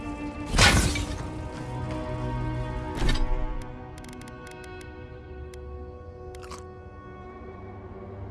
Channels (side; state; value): both; identical; correlation 1.00